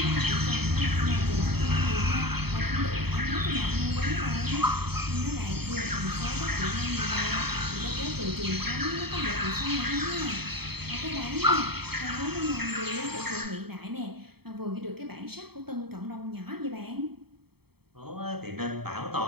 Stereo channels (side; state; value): left; late; 0.96 ms